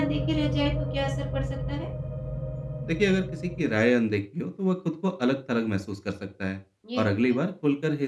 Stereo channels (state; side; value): identical; both; correlation 1.00